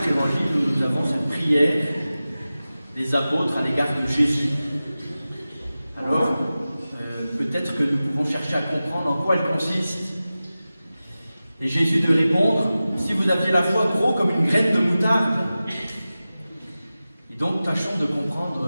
évangiles, où nous avons cette prière des apôtres à l'égard de Jésus. Alors, peut-être que nous pouvons chercher à comprendre en quoi elle consiste. Et Jésus de répondre, si vous aviez la foi gros comme une graine de moutarde. Et donc, tâchons de comprendre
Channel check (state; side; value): inverted; both; correlation -0.95